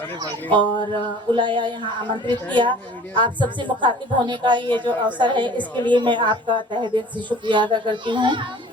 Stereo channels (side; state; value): both; normal; correlation 0.47